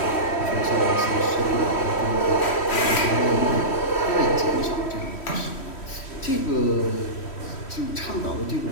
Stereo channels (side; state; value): right; late; 3.1 ms